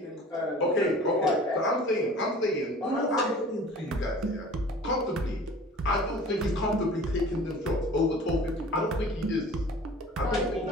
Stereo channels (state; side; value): normal; both; correlation 0.44